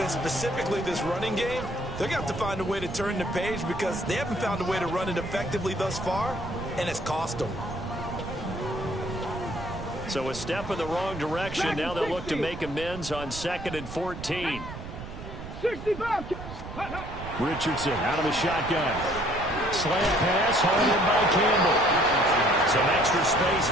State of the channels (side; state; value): right; noise; rumble, 11 dB below the sound